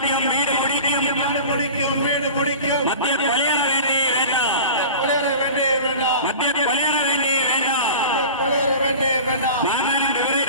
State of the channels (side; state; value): both; inverted; correlation -0.36